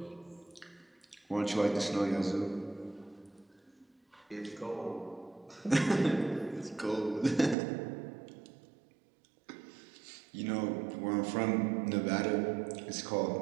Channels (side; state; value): left; drops out; at 7.6 s